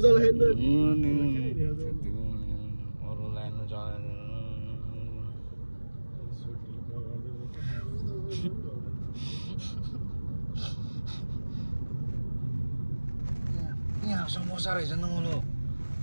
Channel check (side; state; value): both; inverted; correlation -1.00